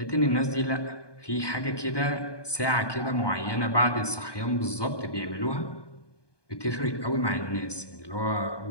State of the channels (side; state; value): right; late; 1.2 ms